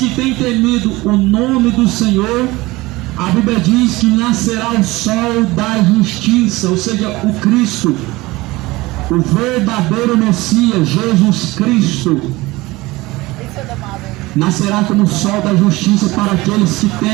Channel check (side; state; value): left; quieter; 20.6 dB